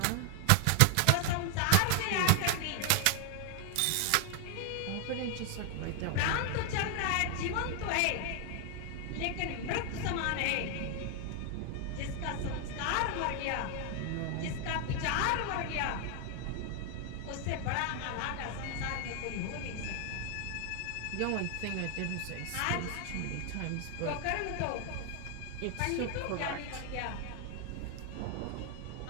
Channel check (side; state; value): both; different; correlation 0.00